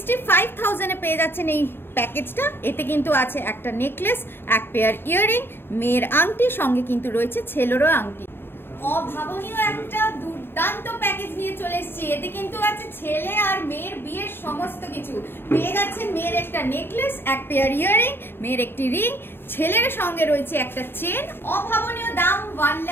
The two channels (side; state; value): right; late; 0.10 ms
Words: এ পেয়ে যাচ্ছেন এই প্যাকেজটা। এতে কিন্তু আছে একটা নেকলেস, এক পেয়ার ইয়াররিং, মেয়ের আংটি, সঙ্গে কিন্তু রয়েছে ছেলেরও আংটি। অভাবনীয় একটা দুর্দান্ত প্যাকেজ নিয়ে চলে এসেছি। এতে কিন্তু আছে ছেলে আর মেয়ের বিয়ের সমস্ত কিছু। পেয়ে যাচ্ছেন মেয়ের একটা নেকলেস, এক পেয়ার ইয়াররিং, মেয়ের একটি রিং, ছেলের সঙ্গে রয়েছে একটা চেন। অভাবনীয় দাম